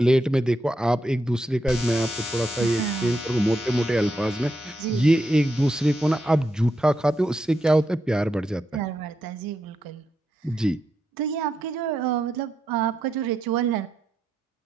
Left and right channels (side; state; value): both; normal; correlation 0.83